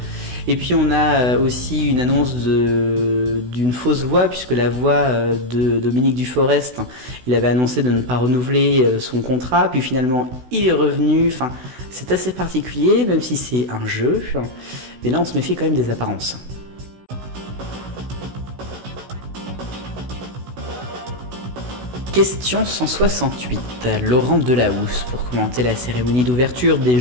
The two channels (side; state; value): left; late; 16 ms